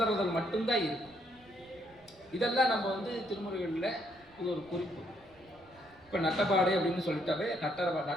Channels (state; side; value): noise; right; rumble, 27 dB below the sound